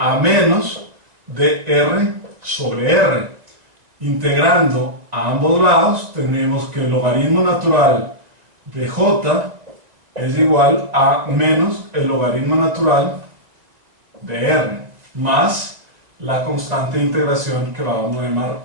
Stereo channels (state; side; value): late; left; 2.0 ms